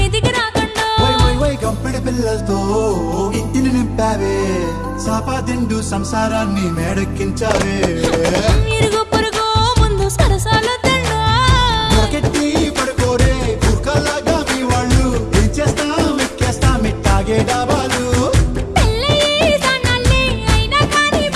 రాకండా వై వై వై గంపెడి పిల్లలతో ఇంటిని నింపావే సాపాదిండు సంసారాన్ని మేడెక్కించావే ఇరుగు పొరుగు ముందు సరసాలు తండా దొరకెట్టి పడుకోరే కుక్కలాగా మీ వాళ్ళు ఏం చేస్తాం ఎక్కేస్తాం ఇట్టాగే డాబాలు పెళ్ళయి సన్నాళ్ళే అయినా కానీ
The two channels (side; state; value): both; identical; correlation 1.00